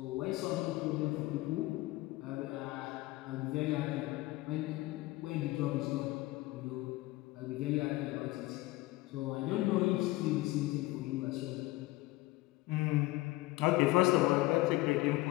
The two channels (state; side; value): quieter; right; 19.6 dB